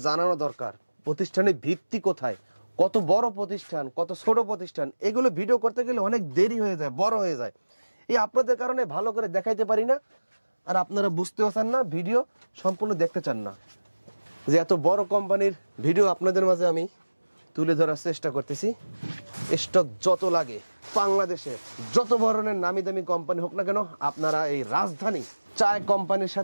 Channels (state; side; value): inverted; both; correlation -1.00